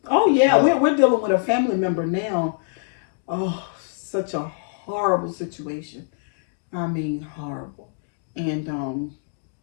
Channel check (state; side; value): silent; right; digital silence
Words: We're dealing with a family member now. Oh, such a horrible situation. I mean, horrible. And